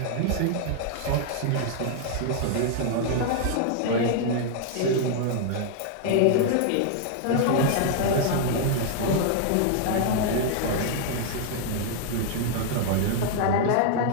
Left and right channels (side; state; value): both; different; correlation 0.00